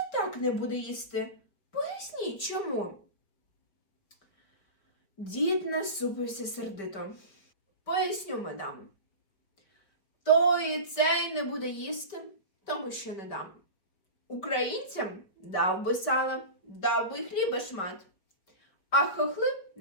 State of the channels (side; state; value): right; late; 5.2 ms